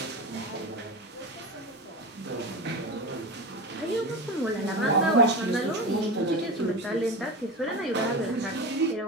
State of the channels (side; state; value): both; normal; correlation 0.25